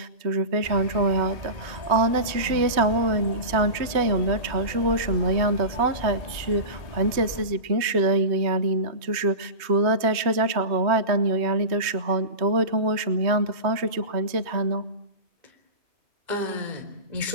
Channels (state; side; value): late; left; 3.1 ms